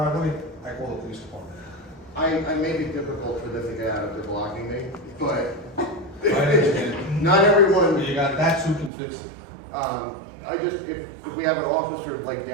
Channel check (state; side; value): drops out; left; at 8.9 s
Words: I call the police department. I make it difficult for them to get out if they're blocking me, but I understand. not everyone, That's who can fix it. if we have an officer like